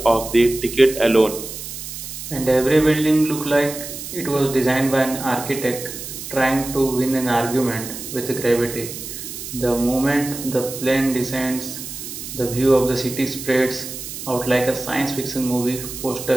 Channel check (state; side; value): noise; right; hiss, 9 dB below the sound